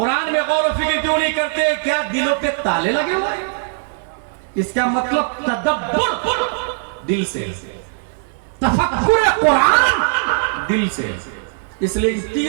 میں غور و فکر کیوں نہیں کرتے؟ کیا دلوں پہ تالے لگے ہوئے ہیں؟ اس کا مطلب تدبر دل سے، تفکر قرآن دل سے. اس لیے ان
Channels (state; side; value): silent; left; digital silence